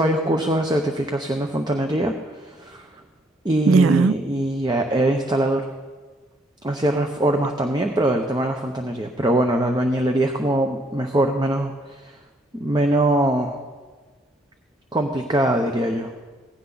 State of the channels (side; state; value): both; normal; correlation 0.68